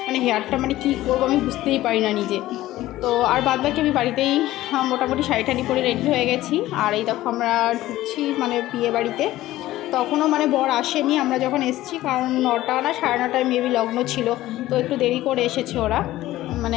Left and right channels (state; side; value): quieter; right; 15.7 dB